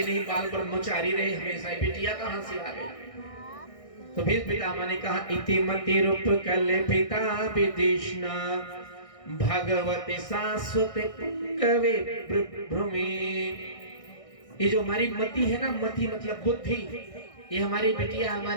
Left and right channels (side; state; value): right; late; 1.6 ms